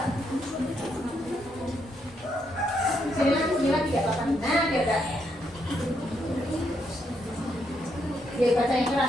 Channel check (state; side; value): normal; both; correlation 0.77